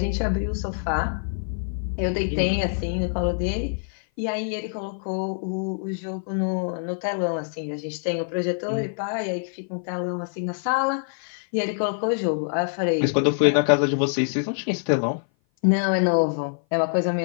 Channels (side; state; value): right; silent; 56 dB below the other